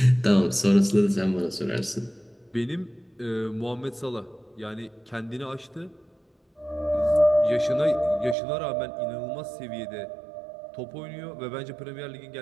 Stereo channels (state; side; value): drops out; left; at 8.3 s